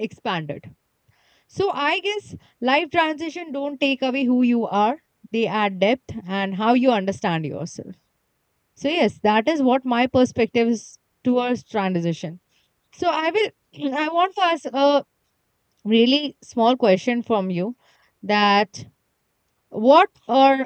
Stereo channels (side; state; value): both; identical; correlation 1.00